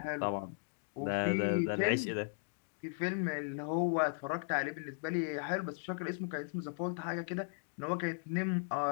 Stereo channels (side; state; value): right; silent; digital silence